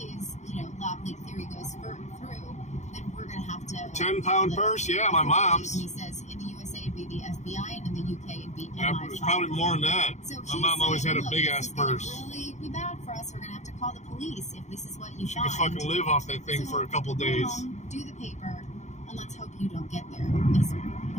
is, lab leak theory goes through, then we're going to have to... 10-pound purse? Yeah, my mom's. He says in the USA it'd be the FBI, and in the UK it'd be Yeah, MI5. it's probably more than that. So My he's mom always saying, had a look, big-ass this is gonna purse. really be bad for us. We're going to have to call the police if this is what you She find. could fucking live off that thing for a couple Go days. home, do the paper, and let's hope you don't get there, is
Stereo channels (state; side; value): late; right; 0.34 ms